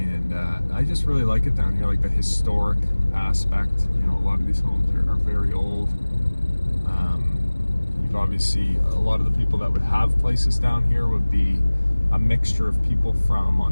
I just really like it down here, like the historic aspect. You know, a lot of these homes are very old. You've obviously, a lot of the people that would have places down here would be a mixture of people from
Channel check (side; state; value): both; inverted; correlation -1.00